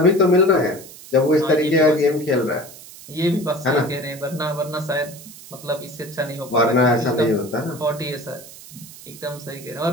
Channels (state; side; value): noise; right; hiss, 17 dB below the sound